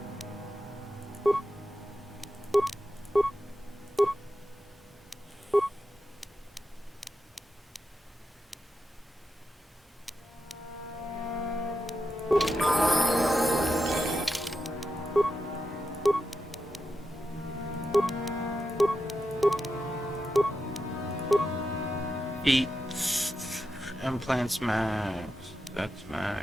Eat implants max. That's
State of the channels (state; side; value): normal; both; correlation 0.88